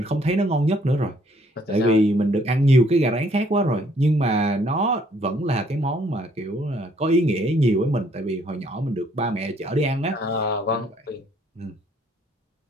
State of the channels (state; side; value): normal; both; correlation 0.65